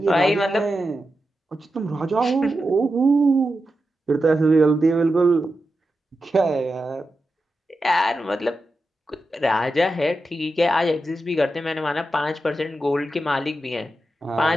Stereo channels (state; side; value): normal; both; correlation 0.90